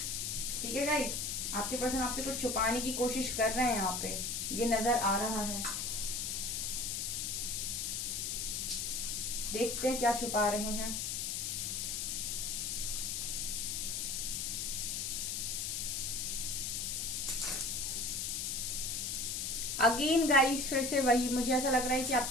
ठीक है गाइस, आपके पर्सन आपसे कुछ छुपाने की कोशिश कर रहे हैं, यहाँ पे ये नजर आ रहा है। देखते हैं क्या छुपा रहे हैं। अगेन गाइस, फिर से वही, मुझे ऐसा लग रहा है कि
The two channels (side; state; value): left; noise; hiss, 1 dB below the sound